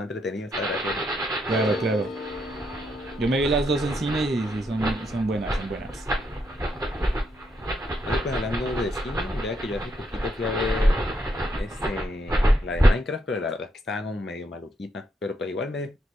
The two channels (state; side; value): normal; both; correlation 0.77